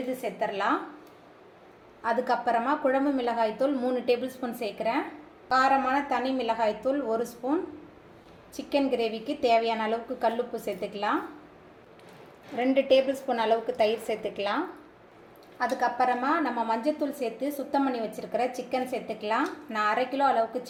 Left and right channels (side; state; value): both; identical; correlation 1.00